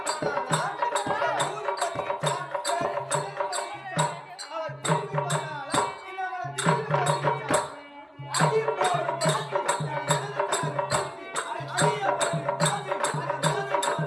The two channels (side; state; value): both; identical; correlation 1.00